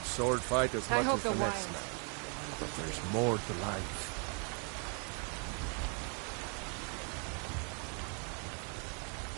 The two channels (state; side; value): quieter; left; 38.5 dB